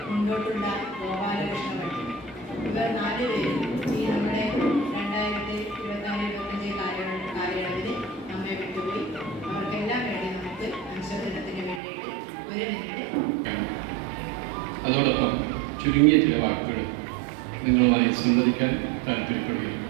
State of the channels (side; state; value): left; drops out; at 11.8 s